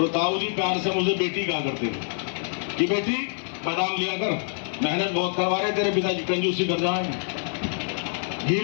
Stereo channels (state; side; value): silent; right; 55 dB below the other